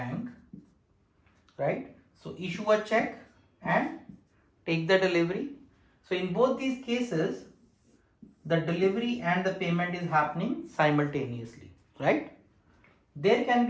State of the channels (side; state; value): both; identical; correlation 1.00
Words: right? So issue a check and take the delivery. So in both these cases, the delivery and the payment is happening simultaneously, right? There can